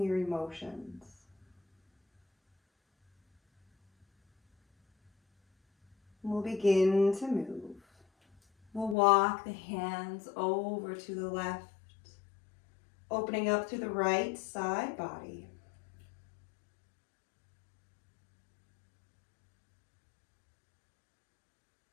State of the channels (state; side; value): drops out; right; at 9.0 s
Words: your emotions. We'll begin to move. We'll walk the hands over to the left Opening up through the right side body.